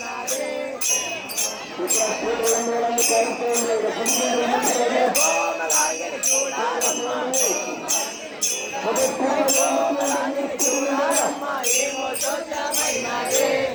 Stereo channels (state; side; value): identical; both; correlation 1.00